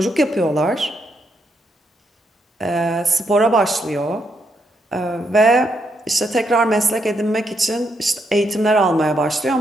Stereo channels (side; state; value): both; normal; correlation 0.79